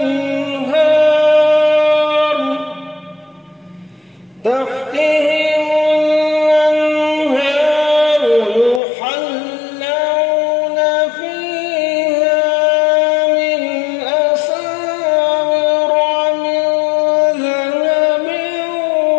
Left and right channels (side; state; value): right; drops out; at 8.8 s